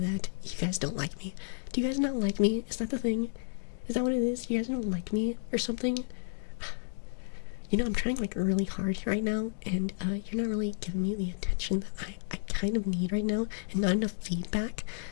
you guys don't like me. Do you guys not like me? Is that the thing? Is that what it is? You guys don't like me or something? You know, I'm trying, like, really hard right now, and you're not really giving me the attention that I kind of need right now, and not enough feedback.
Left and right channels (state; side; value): silent; right; digital silence